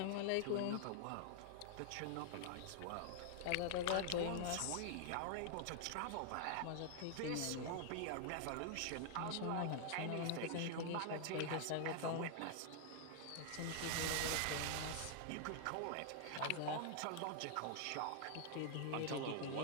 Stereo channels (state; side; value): different; both; correlation 0.00